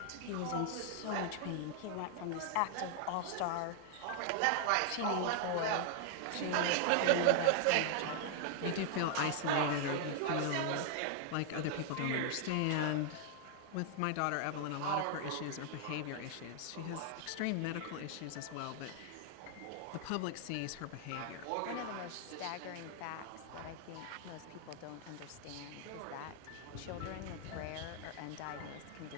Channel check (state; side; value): different; both; correlation 0.00